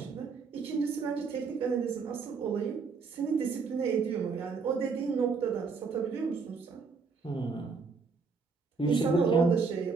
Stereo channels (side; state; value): left; quieter; 5.0 dB